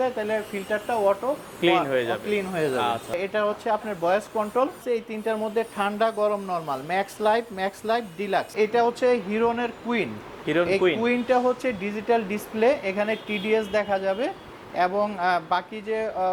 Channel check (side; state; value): both; identical; correlation 1.00